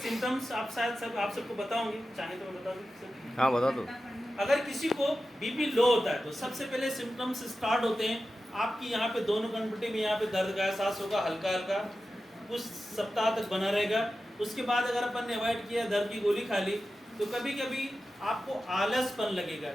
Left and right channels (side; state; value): both; normal; correlation 0.93